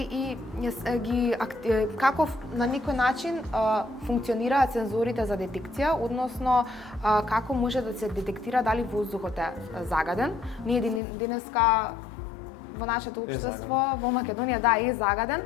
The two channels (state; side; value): drops out; right; at 11.0 s